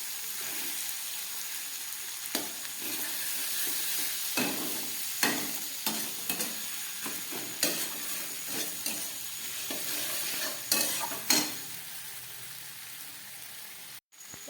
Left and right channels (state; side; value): identical; both; correlation 1.00